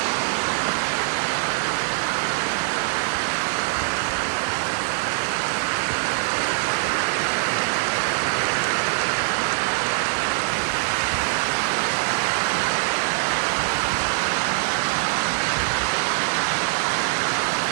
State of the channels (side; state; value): left; silent; digital silence